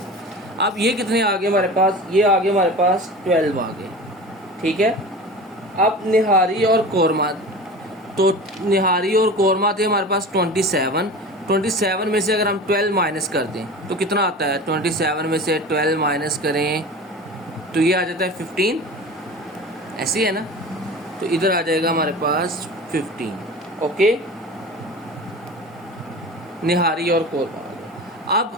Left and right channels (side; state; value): both; normal; correlation 0.34